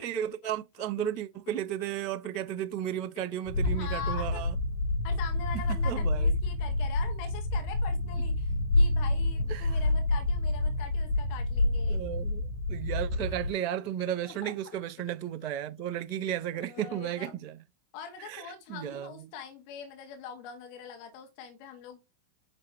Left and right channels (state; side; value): late; right; 16 ms